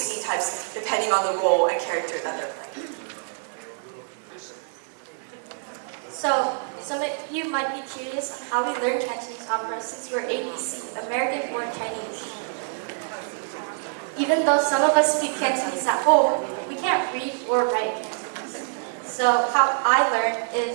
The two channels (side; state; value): left; silent; digital silence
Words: types depending on the role and character that they're playing. So, some of you might be curious on how we learn Cantonese opera since we're ABC, American-born Chinese. Even though some of us speak Cantonese at home, we can't read or write Cantonese. So how I learned